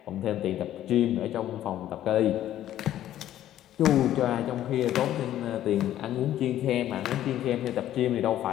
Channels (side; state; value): right; quieter; 12.4 dB